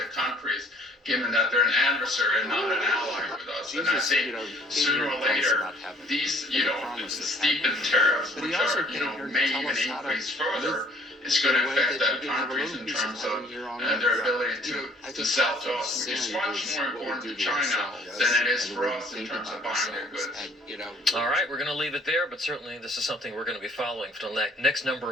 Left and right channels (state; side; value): normal; both; correlation 0.58